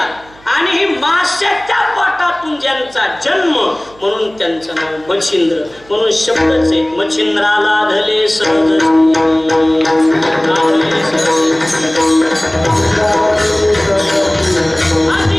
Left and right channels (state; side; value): noise; right; hum, 26 dB below the sound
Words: आणि ही माशाच्या पोटातून ज्यांचा जन्म म्हणून त्यांचं नाव मच्छिंद्र. म्हणून शब्दच आहे, मच्छिंद्राला धले सहज.